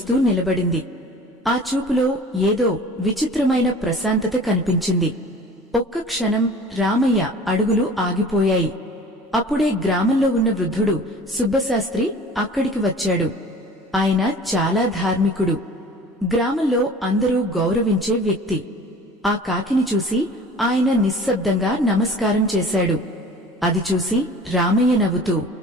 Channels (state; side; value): normal; both; correlation 0.44